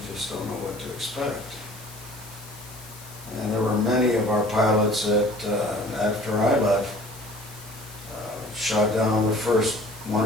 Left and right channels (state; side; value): noise; left; hiss, 17 dB below the sound